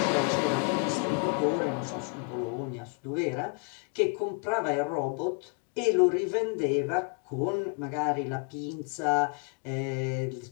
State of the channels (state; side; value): quieter; right; 36.2 dB